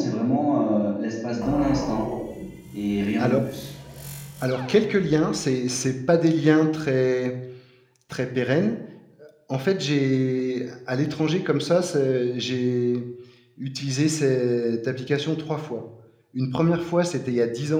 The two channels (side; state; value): both; identical; correlation 1.00